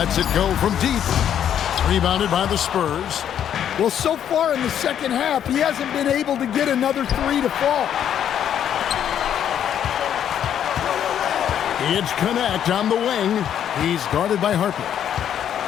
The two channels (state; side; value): quieter; right; 9.6 dB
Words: it go from deep. Rebounded by the Spurs. Well, so far in the second half, he hasn't been able to get another three to fall. It's Connect on the wing. He's guarded by Harper.